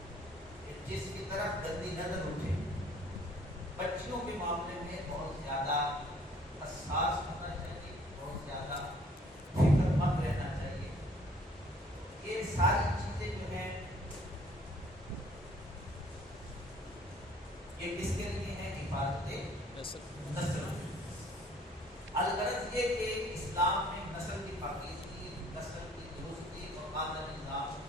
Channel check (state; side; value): normal; both; correlation 0.58